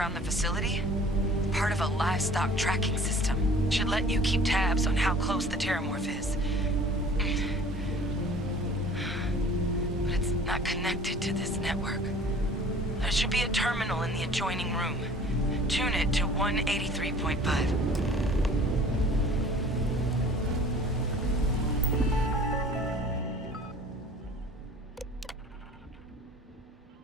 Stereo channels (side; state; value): both; normal; correlation 0.48